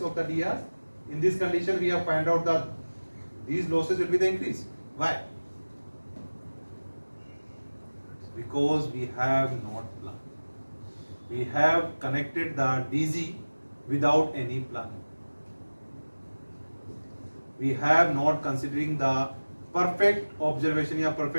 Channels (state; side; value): inverted; both; correlation -1.00